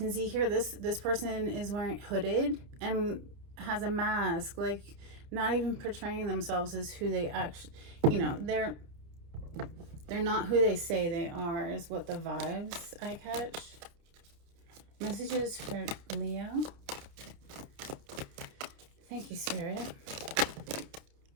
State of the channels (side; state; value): left; late; 30 ms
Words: see here, this person is wearing hooded and has a mask, like not even portraying themselves as who they actually, you know, they're not who they say they are, is what the vibes I catch. Messages for Leo. Thank you, Spirit.